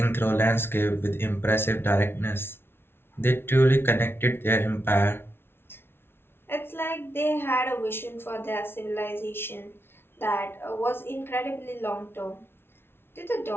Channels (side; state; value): right; late; 0.11 ms